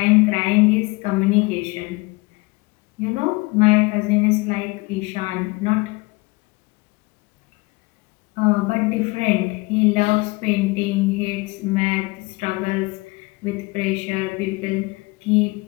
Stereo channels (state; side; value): quieter; right; 24.6 dB